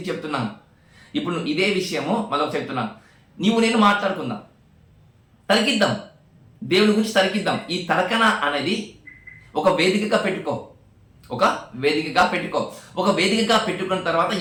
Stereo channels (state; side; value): identical; both; correlation 1.00